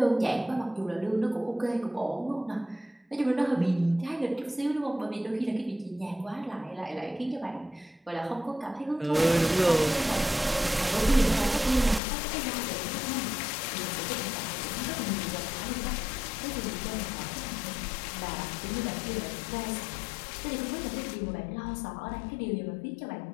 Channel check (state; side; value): drops out; right; at 12.0 s